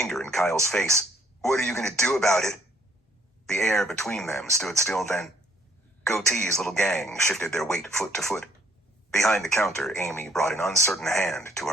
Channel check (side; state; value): both; normal; correlation 0.65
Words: in Kyle's face. "What are you going to do about it?" The air between them stood still then. Goatee's little gang shifted their weight foot to foot. Behind the counter, Amy brought an uncertain hand to